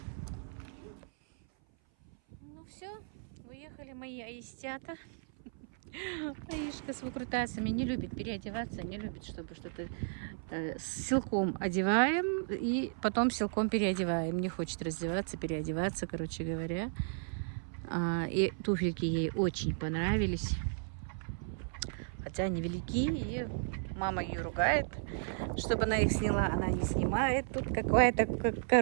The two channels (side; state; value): left; silent; 55 dB below the other